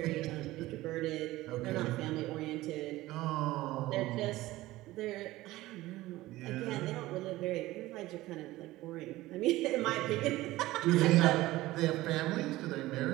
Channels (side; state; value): left; quieter; 17.5 dB